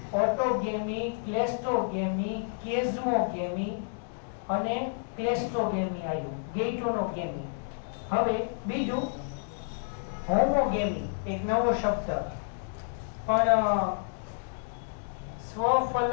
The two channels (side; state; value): right; silent; digital silence